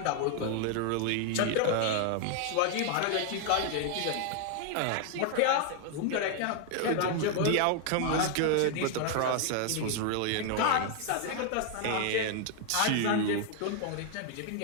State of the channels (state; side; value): different; both; correlation 0.00